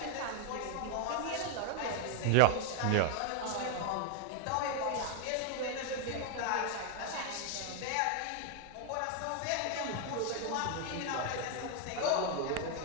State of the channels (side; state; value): both; different; correlation 0.01